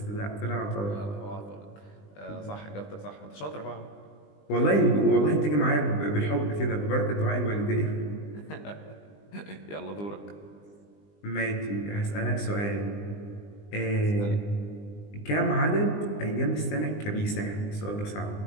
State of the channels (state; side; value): late; right; 20 ms